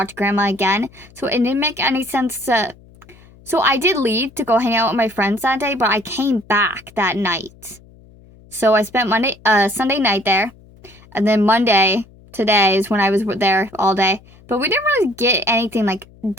Grandma again, so it didn't make any sense to... So I did leave to go hang out with my friends that day, but I came back that night. So I spent Sunday night there, and then Monday, today, is when I was there all day. But we didn't really get anything, like,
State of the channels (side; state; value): left; noise; hum, 25 dB below the sound